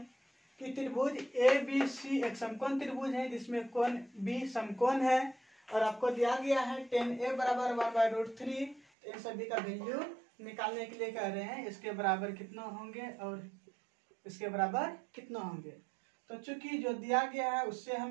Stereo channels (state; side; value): drops out; left; at 8.8 s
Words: कि त्रिभुज ABC एक समकोण त्रिभुज है जिसमें कोण B समकोण है और आपको दिया गया है tan A बराबर 1/√3। इन सभी का वैल्यू निकालने के लिए कह रहे हैं इसके बराबर कितना होंगे और इसके बराबर कितना होंगे। तो चूंकि जो दिया गया है उससे